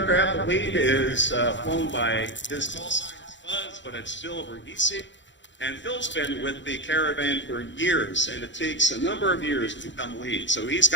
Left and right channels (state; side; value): late; right; 0.54 ms